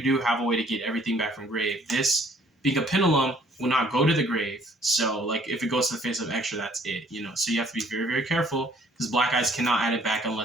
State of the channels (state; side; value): normal; both; correlation 0.60